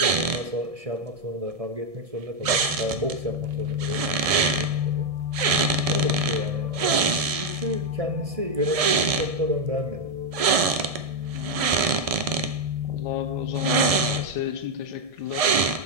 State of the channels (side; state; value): left; late; 1.7 ms